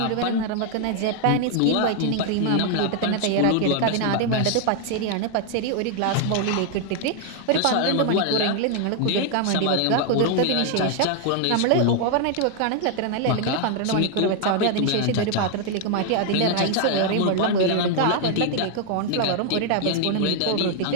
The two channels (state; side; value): different; both; correlation 0.00